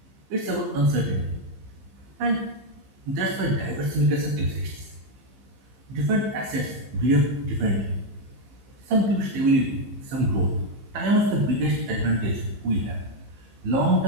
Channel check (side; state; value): left; late; 15 ms